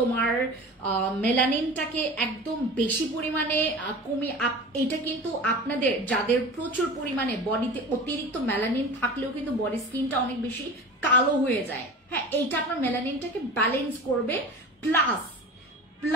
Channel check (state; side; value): normal; both; correlation 0.34